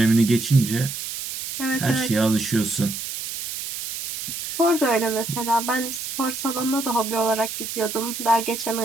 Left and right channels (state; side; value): noise; right; hiss, 7 dB below the sound